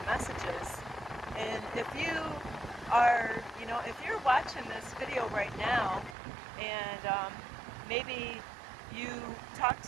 messages. And if you are, if you're watching this video right now and maybe you talked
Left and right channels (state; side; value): drops out; left; at 6.2 s